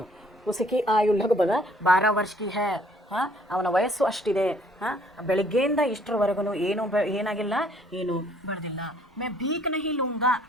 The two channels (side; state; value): both; normal; correlation 0.61